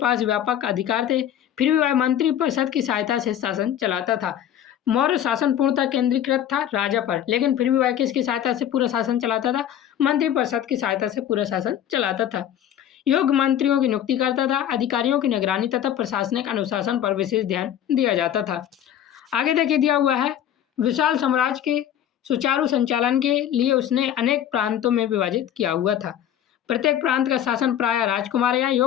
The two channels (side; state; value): right; quieter; 10.5 dB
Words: व्यापक अधिकार थे, फिर भी वह मंत्री परिषद की सहायता से शासन चलाता था। मौर्य शासन पूर्णतः केंद्रीकृत था राजा पर, लेकिन फिर भी वह किसकी सहायता से पूरा शासन चलाता था? मंत्री परिषद की सहायता से पूरा शासन चलाता था। योग्य मंत्रियों की नियुक्ति करता था, अधिकारियों की निगरानी तथा प्रशासनिक अनुशासन पर विशेष ध्यान दिया जाता था। आगे देखिए, दिया हुआ है, विशाल साम्राज्य के सुचारू संचालन के लिए उसने अनेक प्रांतों में विभाजित किया हुआ था। प्रत्येक प्रांत का शासन प्रायः राजकुमार या